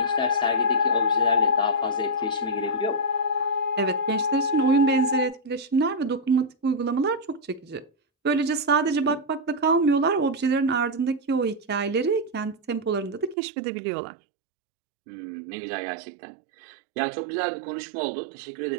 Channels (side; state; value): left; drops out; at 13.4 s